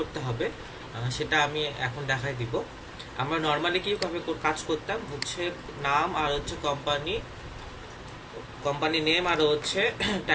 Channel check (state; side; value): identical; both; correlation 1.00